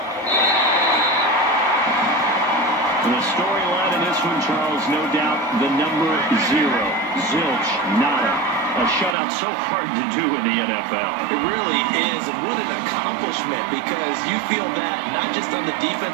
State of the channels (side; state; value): left; drops out; at 9.2 s